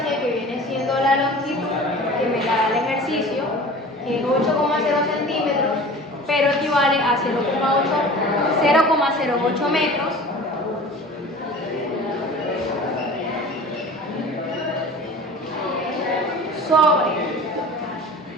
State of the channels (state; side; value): normal; both; correlation 0.40